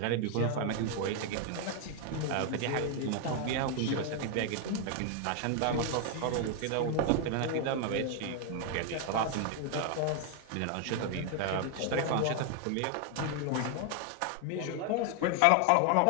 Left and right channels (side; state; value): both; different; correlation 0.00